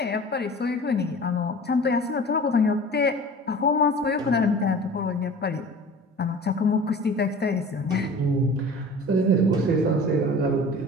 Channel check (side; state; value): both; normal; correlation 0.40